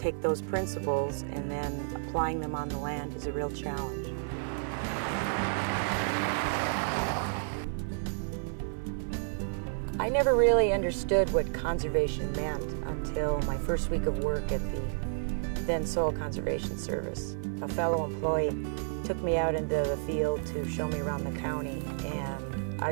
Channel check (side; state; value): left; silent; 57 dB below the other